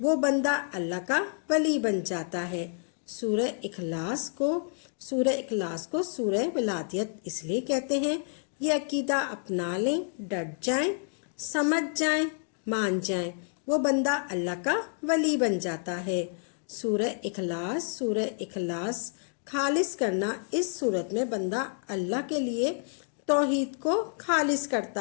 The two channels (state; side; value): silent; right; digital silence